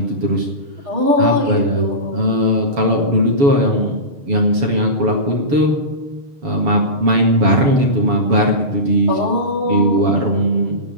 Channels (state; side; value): late; left; 7.0 ms